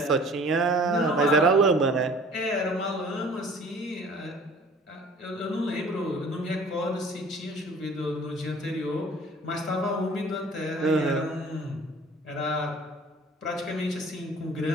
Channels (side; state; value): both; normal; correlation 0.49